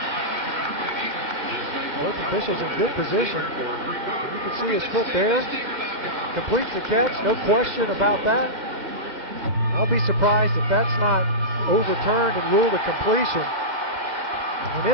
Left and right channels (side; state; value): left; late; 2.0 ms